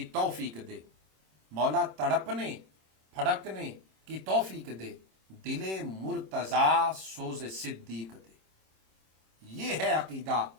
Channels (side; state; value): left; late; 26 ms